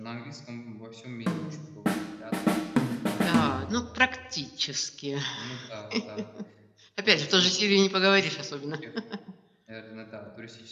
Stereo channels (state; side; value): identical; both; correlation 1.00